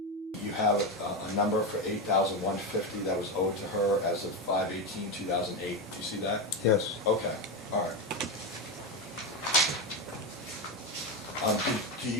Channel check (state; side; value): normal; both; correlation 0.13